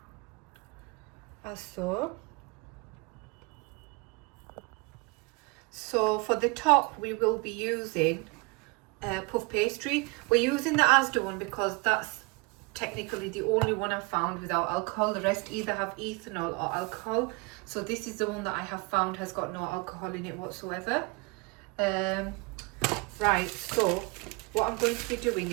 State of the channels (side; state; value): left; quieter; 27.8 dB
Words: as so. So for the top we will be using puff pastry. We're using the Asda one because that's technically the only one I've found without alcohol. The rest either have ethanol or alcohol, so this is the one that I have found has got no alcohol in it whatsoever. Right, so what I'm going to be doing